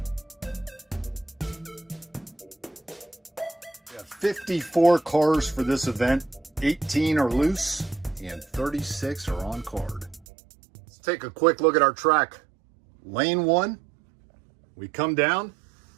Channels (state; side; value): drops out; left; at 10.2 s